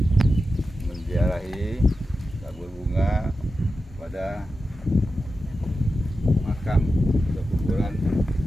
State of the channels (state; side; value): normal; both; correlation 0.91